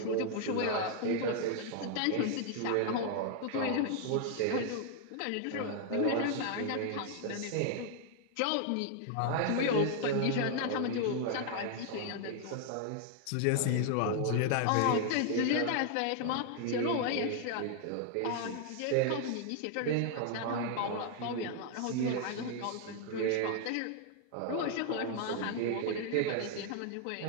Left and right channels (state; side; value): different; both; correlation 0.00